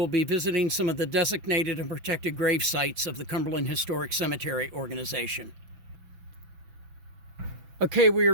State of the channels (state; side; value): late; left; 6.0 ms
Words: be visiting some of the designated and protected grave sites of the Cumberland Historic Cemetery Organization. Okay, we are